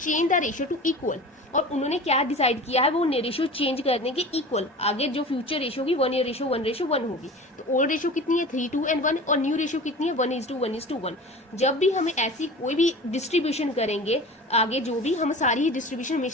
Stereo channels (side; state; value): both; normal; correlation 0.37